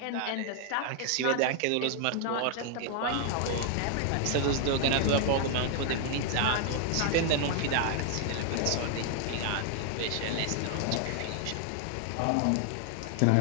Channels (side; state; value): both; different; correlation 0.00